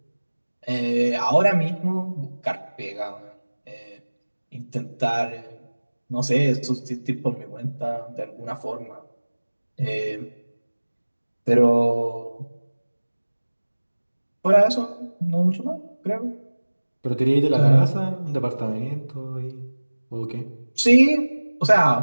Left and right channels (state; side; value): inverted; both; correlation -1.00